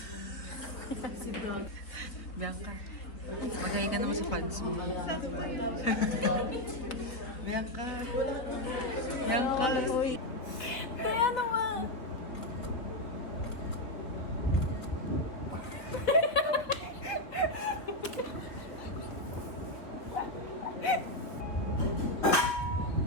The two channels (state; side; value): late; right; 3.7 ms